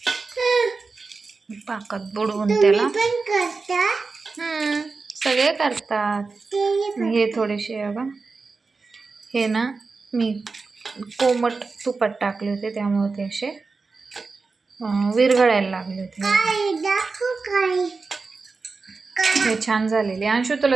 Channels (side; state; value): left; quieter; 4.2 dB